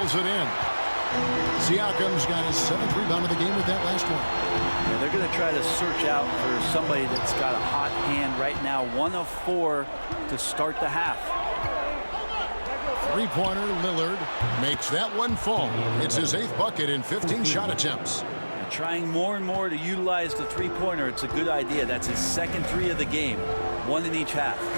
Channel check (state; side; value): inverted; both; correlation -1.00